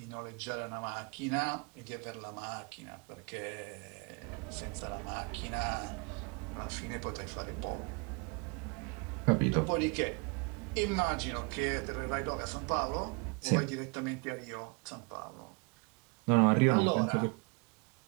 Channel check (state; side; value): quieter; left; 32.2 dB